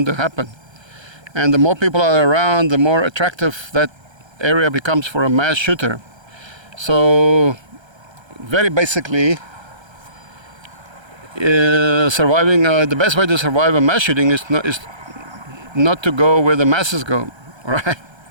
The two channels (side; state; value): left; late; 1.3 ms